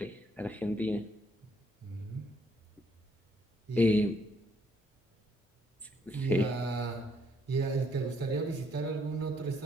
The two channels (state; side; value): normal; both; correlation 0.70